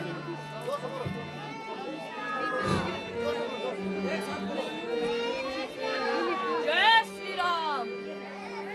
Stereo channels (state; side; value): identical; both; correlation 1.00